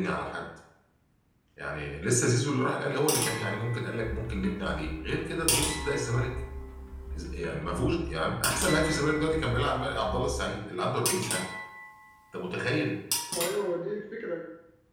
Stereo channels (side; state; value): both; identical; correlation 1.00